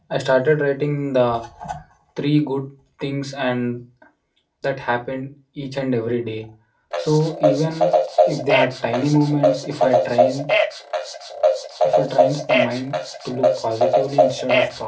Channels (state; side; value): identical; both; correlation 1.00